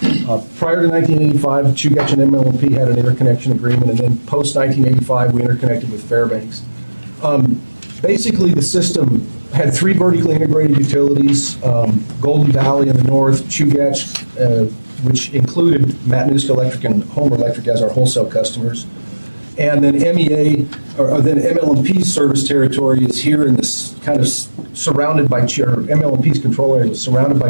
prior to 1985, Chugach and MLMP had an interconnection agreement, and then post-1985, we interconnected with Fairbanks. Basically, the system had three vertically integrated utilities, Golden Valley in the north, Chugach, which included Matanuska Electric and Homer Electric as our wholesale customers. And then then MLMP's service territory is here in this kind of surrounded by, MLMP's control area is surrounded by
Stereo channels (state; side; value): inverted; both; correlation -1.00